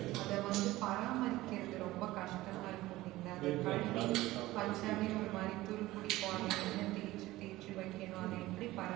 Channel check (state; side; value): quieter; left; 17.5 dB